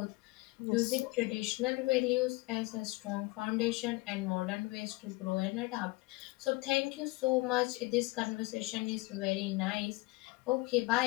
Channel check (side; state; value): right; quieter; 23.2 dB